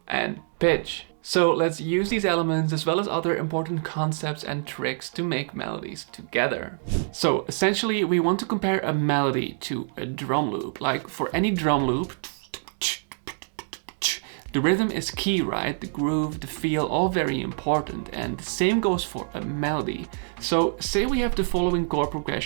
and pitch. So let's use these elements as well as other important concepts and tricks to make melodies together. So essentially we want to compare a melody to a drum loop. Like for any drum loop, the rhythm is key, right? The groove, the feel, all very important. And the same goes for a melody. So say we have the following chord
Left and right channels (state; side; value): silent; left; digital silence